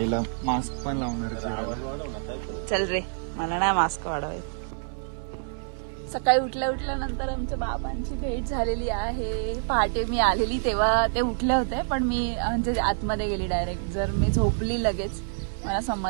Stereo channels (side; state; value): left; silent; 60 dB below the other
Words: मास्क पण लावणार. चल रे, मला नाही मास्क वाढवायचं. सकाळी उठल्या उठल्यानंतर आमच्या बाबांची भेट झालेली आहे. पहाटे मी आलेली तेव्हा ते उठले होते, पण मी म्हणजे आतमध्ये गेली डायरेक्ट. जर मी झोपली लगेच, मला